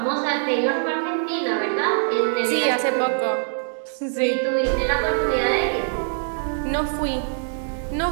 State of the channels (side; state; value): left; silent; 63 dB below the other